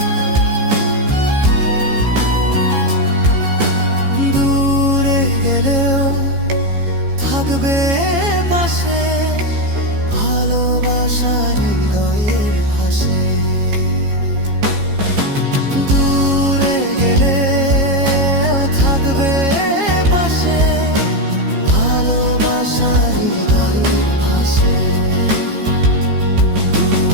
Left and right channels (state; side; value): late; left; 15 ms